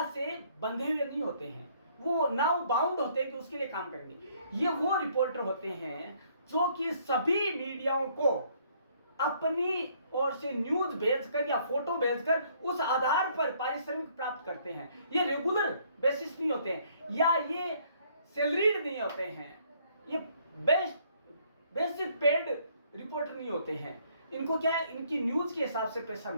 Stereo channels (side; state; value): both; inverted; correlation -0.64